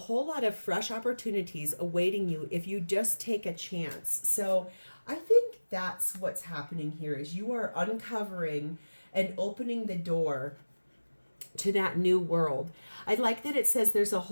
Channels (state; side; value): inverted; both; correlation -1.00